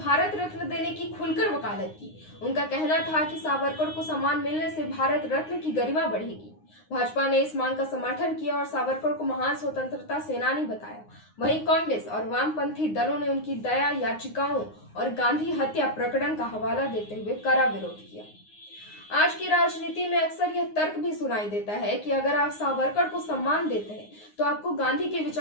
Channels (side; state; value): right; late; 9.6 ms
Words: रत्न देने की खुलकर वकालत की। उनका कहना था कि सावरकर को सम्मान मिलने से भारत रत्न की गरिमा बढ़ेगी। भाजपा ने इस मांग का समर्थन किया और सावरकर को महान स्वतंत्रता सेनानी बताया। वहीं कांग्रेस और वामपंथी दलों ने उनकी दया याचिकाओं और गांधी हत्या प्रकरण का हवाला देते हुए कड़ा विरोध किया। आज की राजनीति में अक्सर यह तर्क भी सुनाई देता है कि अगर आप सावरकर को सम्मान देते हैं तो आपको गांधी की